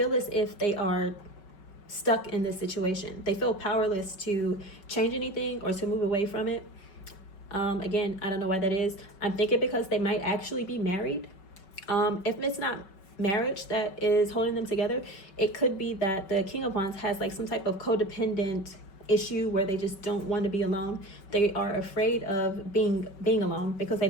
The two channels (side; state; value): right; late; 5.3 ms